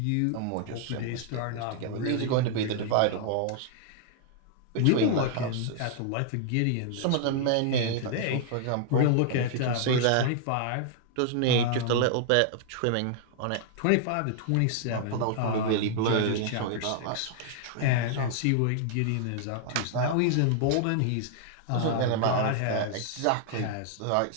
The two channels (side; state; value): both; different; correlation 0.00